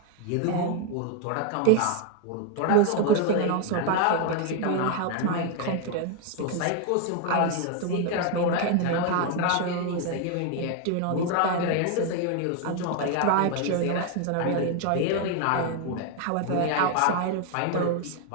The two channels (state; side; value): different; both; correlation 0.01